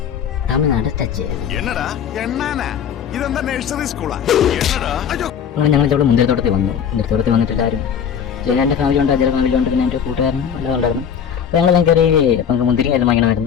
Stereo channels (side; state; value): right; quieter; 8.0 dB